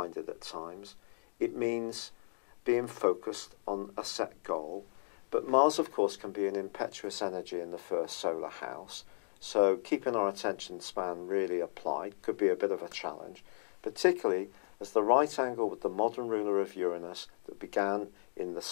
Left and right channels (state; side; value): silent; right; digital silence